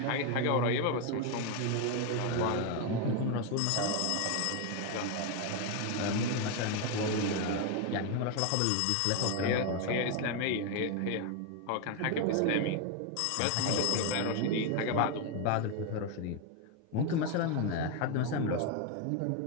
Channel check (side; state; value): both; different; correlation 0.01